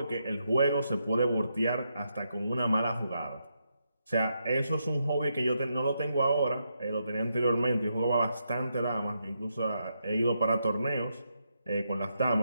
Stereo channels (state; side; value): inverted; both; correlation -0.81